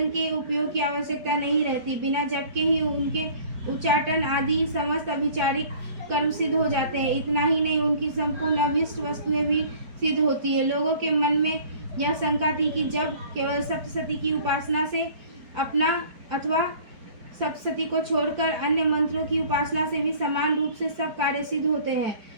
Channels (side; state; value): left; late; 4.7 ms